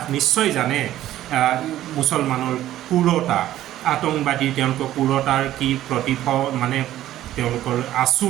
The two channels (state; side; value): quieter; left; 13.4 dB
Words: নিশ্চয় জানে, মুছলমানৰ ক্ৰূৰতা, আতংকবাদীৰ তেওঁলোকৰ ক্ৰূৰতাৰ কি মানে তেওঁলোকৰ